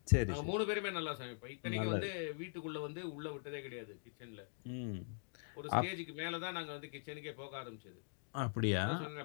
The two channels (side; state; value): right; silent; digital silence